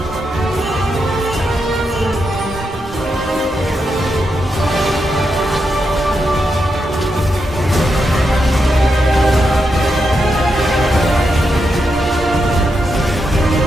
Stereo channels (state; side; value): normal; both; correlation 0.84